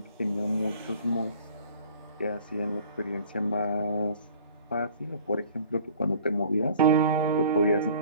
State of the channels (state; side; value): inverted; both; correlation -0.50